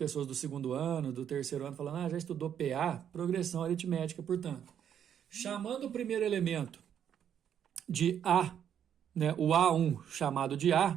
do segundo ano, do terceiro ano, falando, já estudou PA, progressão aritmética, portanto. Chamando o primeiro elemento de A, né, o A1 chamado de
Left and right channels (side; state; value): left; quieter; 9.1 dB